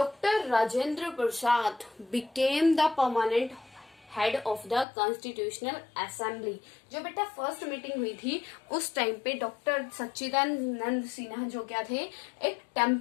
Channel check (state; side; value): drops out; right; at 4.9 s